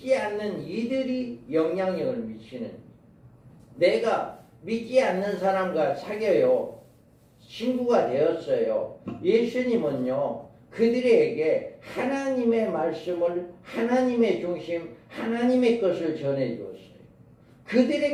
않는 이들이 영향력을 미치는지. 내가 믿지 않는 사람과 사귀어요. 친구가 되었어요. 예수님은요, 그들에게 하나님의 말씀을, 하나님의 중심, 하나님의 것을 전해주었어요.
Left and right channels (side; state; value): both; identical; correlation 1.00